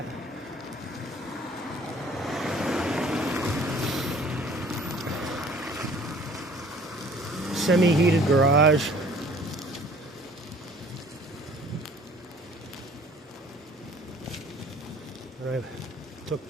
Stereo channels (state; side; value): normal; both; correlation 0.53